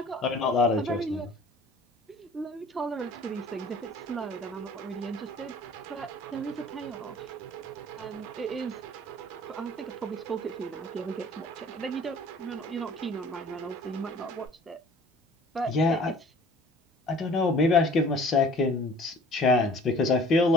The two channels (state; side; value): normal; both; correlation 0.49